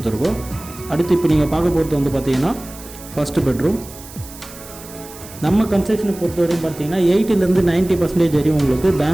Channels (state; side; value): noise; right; hiss, 17 dB below the sound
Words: அடுத்து இப்போ நீங்கள் பார்க்க போகிறது வந்து பார்த்தீங்கன்னா ஃபஸ்ட்டு பெட்ரூம். நம்ம கன்ஸ்ட்ரக்ஷனை பொறுத்தவரையும் பார்த்தீங்கன்னா 80% 90% வரையும் உங்களுக்கு